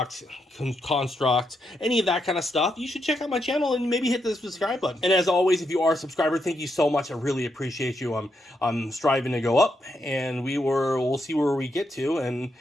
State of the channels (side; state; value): both; normal; correlation 0.81